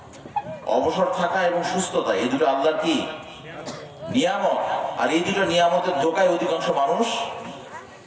অবসর থাকা এবং সুস্থতা, এই দুটো আল্লাহর কি নিয়ামত। আর এই দুটো নিয়ামতের ধোঁকায় অধিকাংশ মানুষ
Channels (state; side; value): identical; both; correlation 1.00